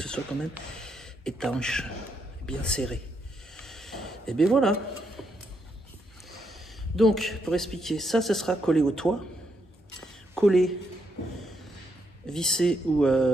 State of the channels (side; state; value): both; normal; correlation 0.78